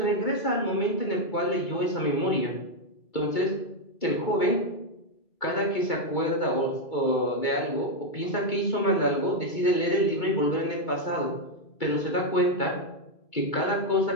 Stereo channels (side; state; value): right; late; 2.3 ms